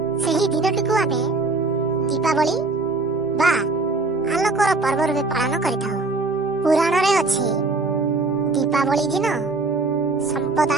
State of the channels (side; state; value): left; quieter; 3.5 dB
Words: ସେହି ଦିନଟିକୁ ଆମେ ଦୀପାବଳି ବା ଆଲୋକର ପର୍ବ ରୂପେ ପାଳନ କରିଥାଉ। ପୁରାଣରେ ଅଛି ଦୀପାବଳି ଦିନ